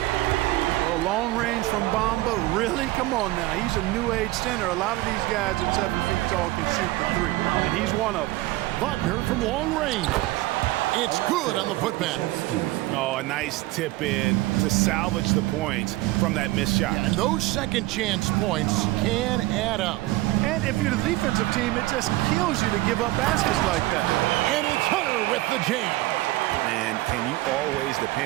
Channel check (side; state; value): left; quieter; 18.7 dB